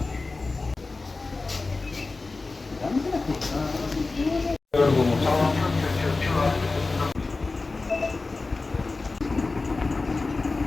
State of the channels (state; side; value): quieter; right; 3.6 dB